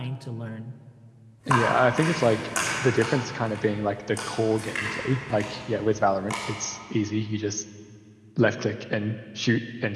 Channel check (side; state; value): both; identical; correlation 1.00